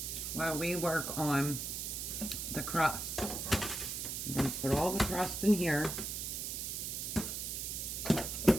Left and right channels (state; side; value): noise; right; hiss, 4 dB below the sound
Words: while we work on the crust. I'm going to put all the crust in here.